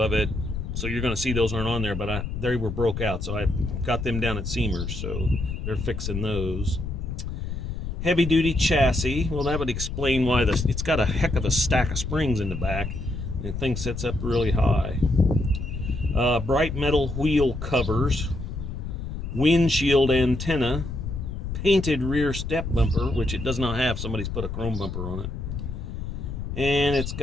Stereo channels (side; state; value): left; noise; rumble, 5 dB below the sound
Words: it. So you're going to see those aren't on there, but they were broke out. So I got them down at Seamers, so they're fixing those. Heavy duty chassis. Well, that would explain why it's got a heck of a stack of springs in the back. And the thing sits up really high. Bright metal wheel covers. Windshield antenna. Painted rear step bumper, which it does not have. Somebody's put a chrome bumper on it. And it's